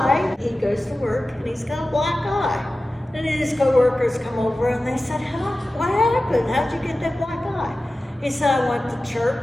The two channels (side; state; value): both; normal; correlation 0.95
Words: he goes to work and he's got a black eye. And his coworkers come over and they said, what happened? How'd you get that black eye? He said, I went to